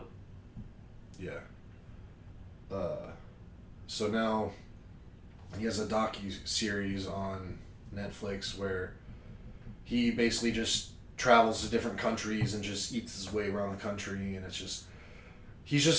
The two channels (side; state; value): both; identical; correlation 1.00